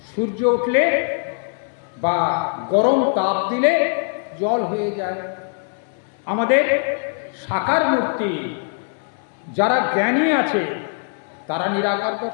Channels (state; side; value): silent; right; 61 dB below the other